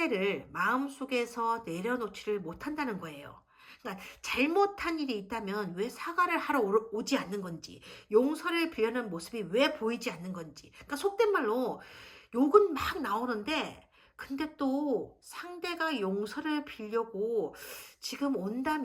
마음속에서 내려놓지를 못한다는 거예요. 그러니까 잘못한 일이 있다면 왜 사과를 하러 오지 않는 건지, 용서를 빌려는 모습이 왜 보이지 않는 건지. 그러니까 속된 말로 욕은 막 나오는데 근데 또 상대가 용서를 빌려고 지금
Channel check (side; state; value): both; identical; correlation 1.00